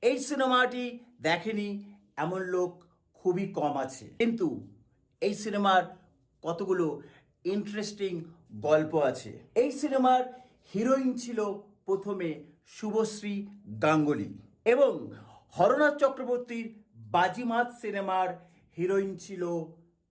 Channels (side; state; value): both; identical; correlation 1.00